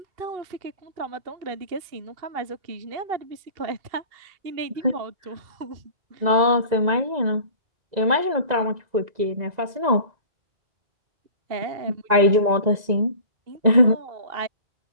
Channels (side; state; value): left; late; 2.0 ms